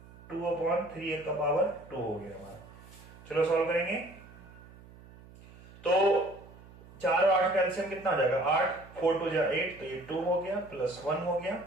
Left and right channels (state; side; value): noise; right; hum, 21 dB below the sound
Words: का पावर 2 हो गया हमारा। चलो सॉल्व करेंगे। तो 4 और 8 का एलसीएम कितना हो जाएगा 8, 4 2 8, तो ये 2 हो गया प्लस 1 हो गया,